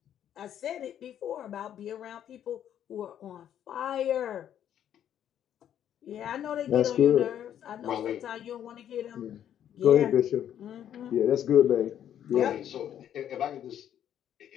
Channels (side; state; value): right; quieter; 10.2 dB